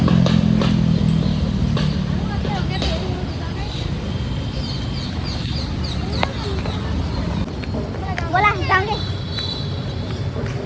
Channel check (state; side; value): identical; both; correlation 1.00